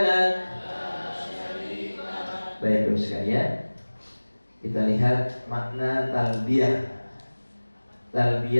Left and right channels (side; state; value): both; inverted; correlation -1.00